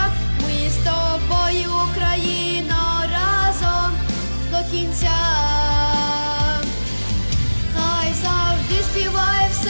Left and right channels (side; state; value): both; inverted; correlation -1.00